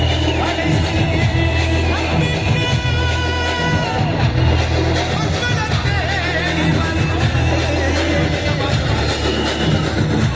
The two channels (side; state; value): both; identical; correlation 1.00